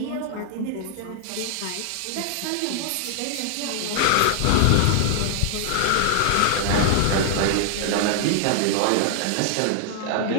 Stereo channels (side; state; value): both; different; correlation 0.00